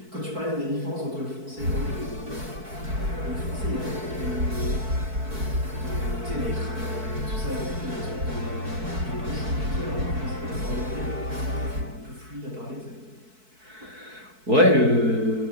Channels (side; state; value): left; late; 4.6 ms